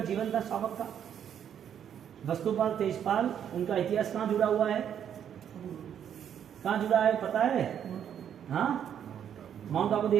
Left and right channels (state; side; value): quieter; left; 9.1 dB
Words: जीवन था श्रावक का। वस्तुपाल तेजपाल, उनका इतिहास कहाँ जुड़ा हुआ है? कहाँ जुड़ा है पता है? हाँ, माउंट आबू